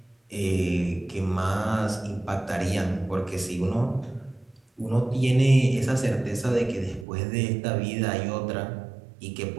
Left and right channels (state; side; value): drops out; left; at 7.1 s